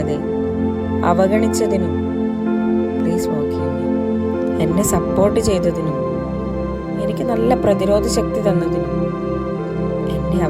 അവഗണിച്ചതിനും പ്ലീസ് ഫോർഗീവ് മീ. എന്നെ സപ്പോർട്ട് ചെയ്തതിനും എനിക്ക് നല്ല പ്രതിരോധ ശക്തി തന്നതിനും എൻ്റെ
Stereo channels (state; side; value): identical; both; correlation 1.00